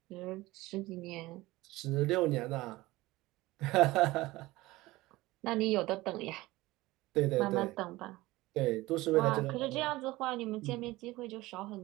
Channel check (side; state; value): left; quieter; 19.3 dB